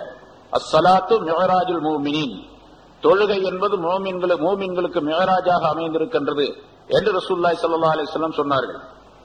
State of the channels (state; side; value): identical; both; correlation 1.00